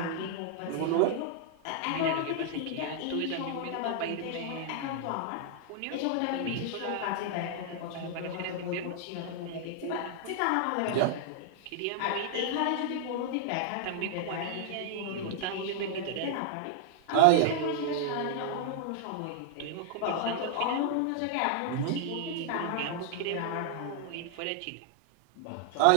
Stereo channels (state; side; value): different; both; correlation -0.01